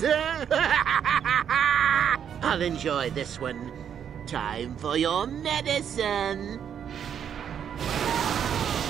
I'll enjoy this one. Time for your medicine.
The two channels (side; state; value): left; quieter; 8.5 dB